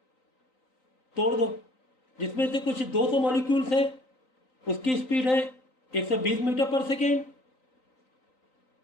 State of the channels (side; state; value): right; late; 3.9 ms